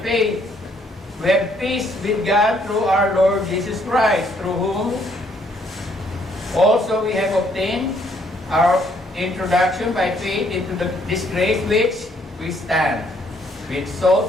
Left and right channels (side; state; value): both; normal; correlation 0.68